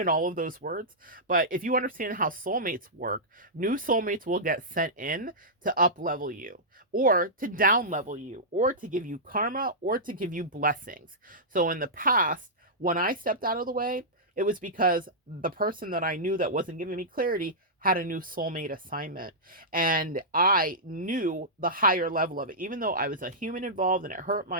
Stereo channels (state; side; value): normal; both; correlation -0.13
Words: all of those words, but if you understand how soulmates work, new soulmates will get sent in to up level you, or to down level you, or to give you karma, or to give you blessings. So in the past, when I stepped out of the way, it was because the person that I knew that wasn't giving me clarity had a new soulmate assignment. And I knew the higher level of it, even though I was a human involved and it hurt